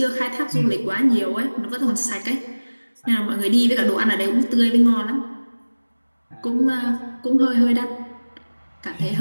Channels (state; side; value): inverted; both; correlation -1.00